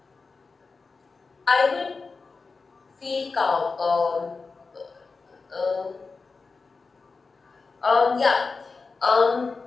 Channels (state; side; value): quieter; right; 4.3 dB